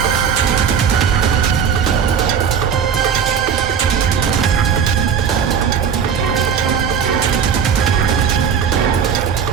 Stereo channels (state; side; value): quieter; left; 7.3 dB